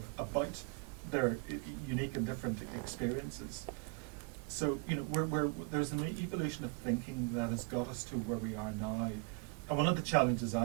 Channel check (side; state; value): left; quieter; 33.4 dB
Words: about their unique and different experiences. So, you know, there's an evolution of thinking that has got us to where we are now. And one of the challenges